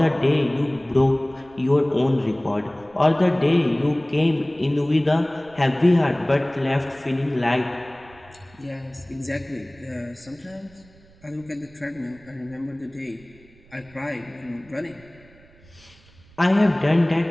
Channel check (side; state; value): right; noise; rumble, 26 dB below the sound